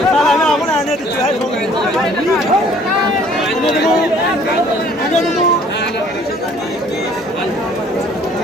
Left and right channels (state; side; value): normal; both; correlation 0.56